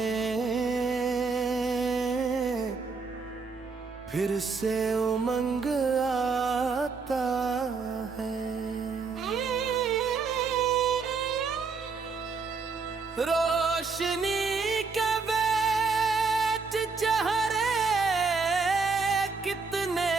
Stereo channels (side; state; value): left; quieter; 4.7 dB